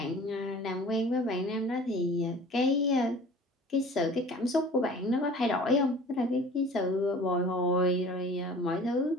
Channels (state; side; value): normal; both; correlation 0.44